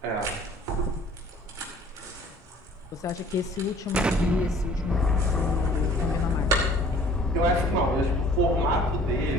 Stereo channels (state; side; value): normal; both; correlation 0.53